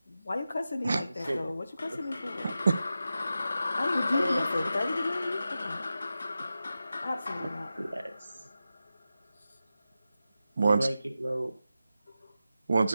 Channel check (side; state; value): both; inverted; correlation -0.92